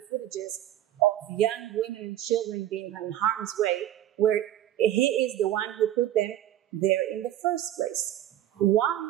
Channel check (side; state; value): left; quieter; 12.4 dB